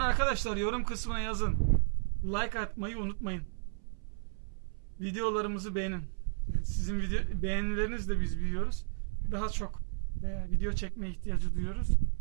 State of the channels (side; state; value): left; silent; 56 dB below the other